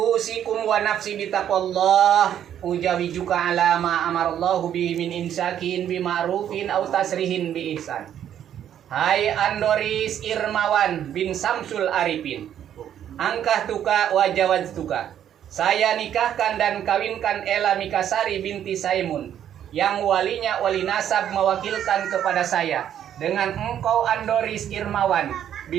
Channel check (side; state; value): left; quieter; 10.1 dB